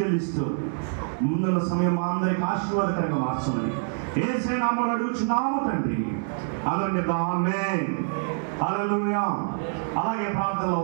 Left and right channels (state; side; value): silent; left; 61 dB below the other